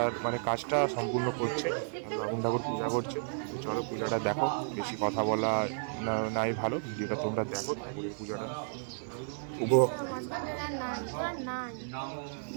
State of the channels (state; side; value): silent; left; 56 dB below the other